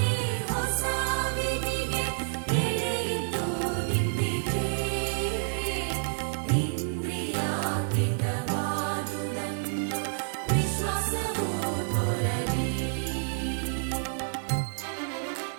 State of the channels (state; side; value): silent; left; 59 dB below the other